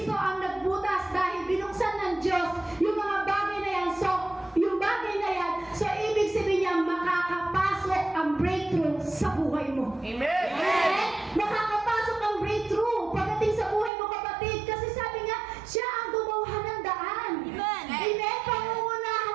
ang nagbutas dahil binuksan ng Diyos yung mga bagay na yan. So, yung bagay na yan, so ibig sabihin niya, makakapasok ang breakthrough sa buhay mo. Amen! Amen? Makakapasok ang breakthrough pagdating sa buhay mo, kapatid. Kasi sabi nga, siya ang gumawa ng daan. Amen?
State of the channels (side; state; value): left; drops out; at 13.9 s